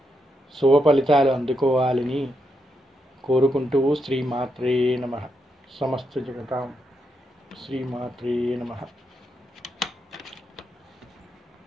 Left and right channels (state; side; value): normal; both; correlation 0.82